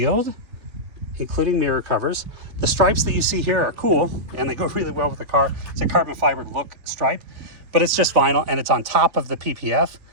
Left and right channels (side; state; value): left; late; 3.0 ms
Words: including mirror covers. The stripes that you see here are cool and they go really well with the car. It's a carbon fiber look stripe, but it's just vinyl and it's on top of the PPF.